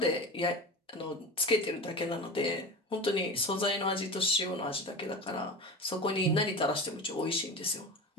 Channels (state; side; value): normal; both; correlation 0.30